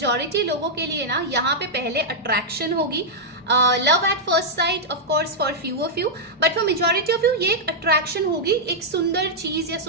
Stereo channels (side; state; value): both; normal; correlation -0.05